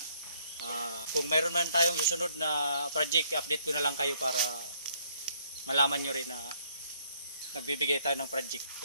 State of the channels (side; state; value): both; inverted; correlation -0.66